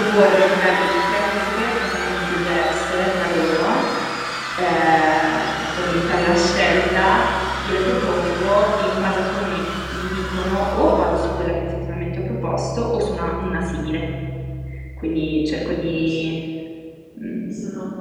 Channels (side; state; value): both; identical; correlation 1.00